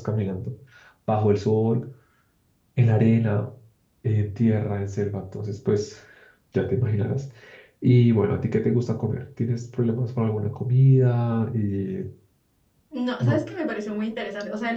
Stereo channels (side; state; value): both; identical; correlation 1.00